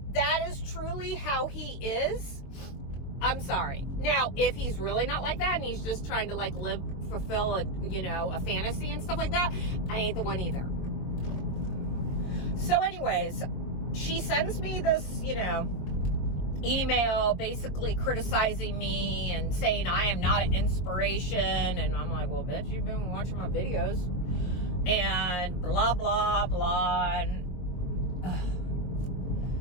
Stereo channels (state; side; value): late; right; 23 ms